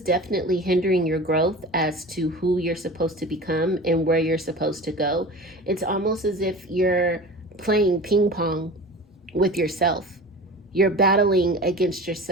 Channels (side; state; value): both; normal; correlation 0.35